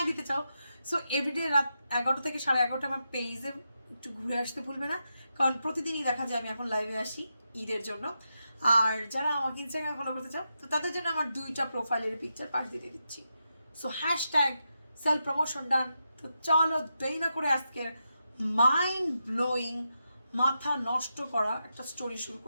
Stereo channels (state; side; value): inverted; both; correlation -0.87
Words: দিতে চাও, সো এভরিডে রাত 11টা থেকে 11:30 আমার পেজে একটু ঘুরে আসতে ভুলবে না। কারণ প্রতিদিনই দেখা যায় আমি এখন লাইভে আসি ঈদের জন্য। আর যারা আমাকে ইনস্টাগ্রামে ফলো করতে চাও, তো তাদের জন্য আমার 2টা প্রোফাইলের পিকচার পাঠিয়ে দিয়ে দিচ্ছি। সো হ্যাশট্যাগ সেলফ প্রমোশন ডান। তো চলো দেরি না করে আজকের মাইন্ড ব্লোয়িং, মাথা নষ্ট করা একটা স্টোরি শুরু